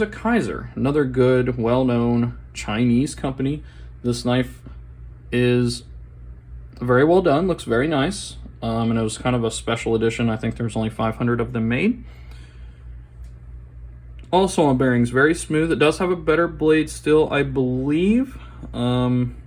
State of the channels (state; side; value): identical; both; correlation 1.00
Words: a Kaiser, another good, well-known Chinese company. This knife is very well done, looks very nice, and it was kind of a special edition. I think there's only 500 of them made. Also on bearings, very smooth. It does have a better blade still, I believe.